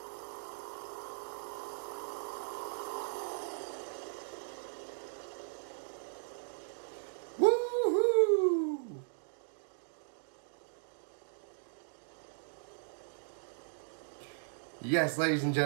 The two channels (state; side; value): silent; left; digital silence